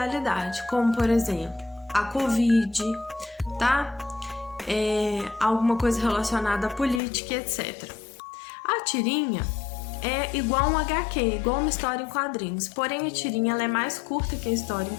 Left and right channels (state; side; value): drops out; right; at 7.0 s